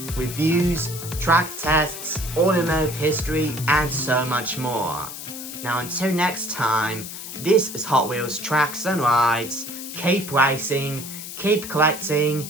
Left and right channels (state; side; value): noise; left; hiss, 10 dB below the sound